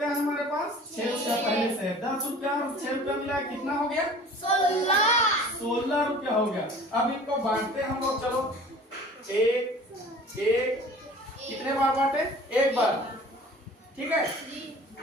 है हमारे पास? 6 रुपया पहले से। 10 रुपया और 6 रुपया मिला, कितना हो गया? 16 रुपया हो गया। अब इनको बांटते हम लोग। चलो एक कितने बार बांटे? 1 बार, ठीक है।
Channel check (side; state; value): both; normal; correlation 0.45